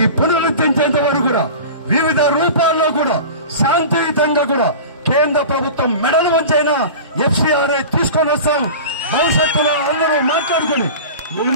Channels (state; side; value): inverted; both; correlation -0.34